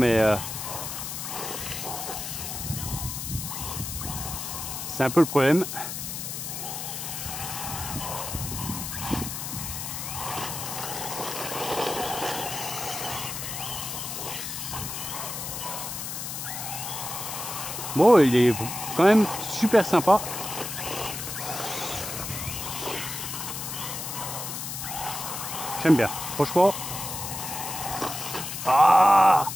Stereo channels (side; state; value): left; noise; hiss, 6 dB below the sound